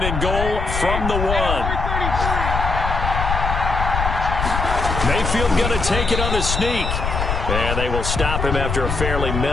and goal from the 1. Mayfield going to take it on the sneak. And they will stop him after a fairly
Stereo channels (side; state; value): left; noise; rumble, 2 dB below the sound